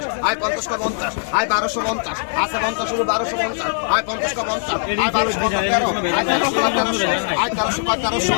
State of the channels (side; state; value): right; silent; digital silence